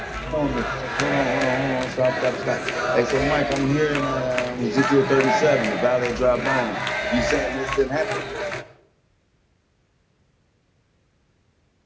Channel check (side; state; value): both; identical; correlation 1.00